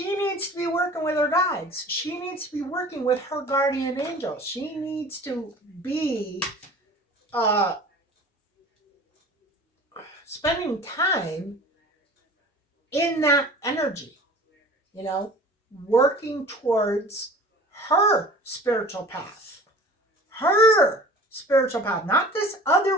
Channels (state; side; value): normal; both; correlation 0.43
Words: needs to be working with her guides. She needs to be working with her guardian angel. She needs to be uh, spending time in that energy, you know, working towards her spiritual path. Her spiritual path, not this